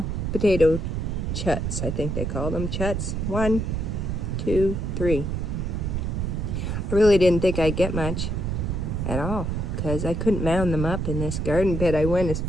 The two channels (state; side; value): noise; right; rumble, 1 dB below the sound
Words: potato chuts, I think they call them chuts. 1, 2, 3. I really didn't think I'd get much at all because I couldn't mound them up in this garden bed. I went as